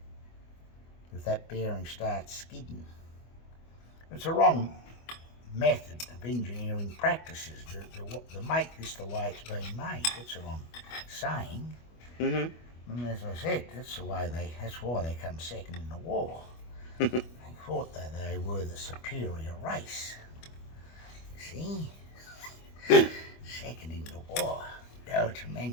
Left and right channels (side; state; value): right; late; 25 ms